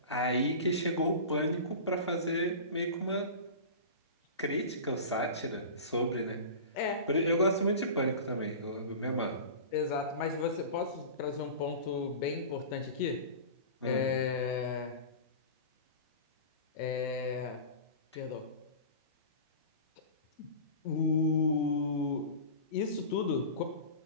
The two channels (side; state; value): both; inverted; correlation -0.33